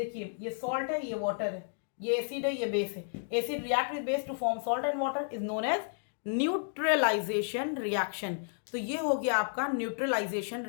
ये सॉल्ट है, ये वाटर है, ये एसिड है, ये बेस है। Acid react with base to form salt and water is known as neutralisation reaction. तो ये हो गया आपका न्यूट्रलाइजेशन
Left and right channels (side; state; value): right; silent; digital silence